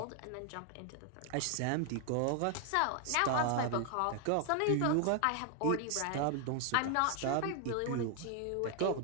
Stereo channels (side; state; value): both; different; correlation 0.00